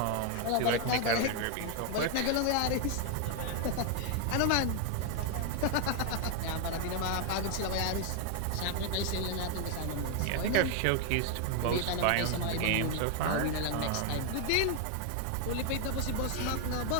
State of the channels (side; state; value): both; different; correlation 0.00